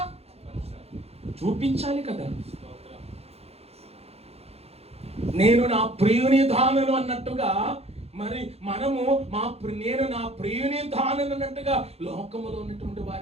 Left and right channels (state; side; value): late; left; 0.30 ms